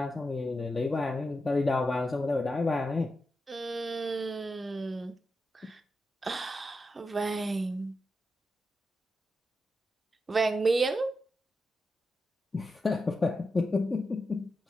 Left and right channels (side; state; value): both; normal; correlation 0.88